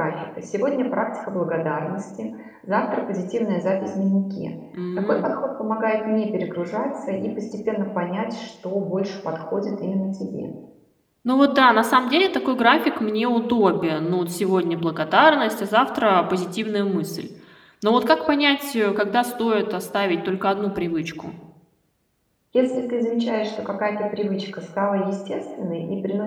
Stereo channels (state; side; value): identical; both; correlation 1.00